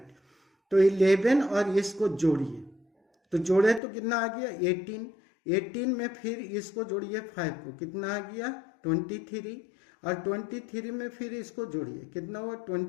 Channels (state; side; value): drops out; right; at 3.8 s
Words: तो 11 और इसको जोड़िए, तो जोड़े तो कितना आ गया? 18। 18 में फिर इसको जोड़िए 5 को, कितना आ गया? 23 और 23 में फिर इसको जोड़िए, कितना हुआ?